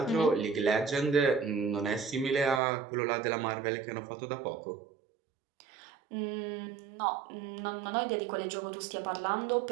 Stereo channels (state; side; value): drops out; left; at 2.6 s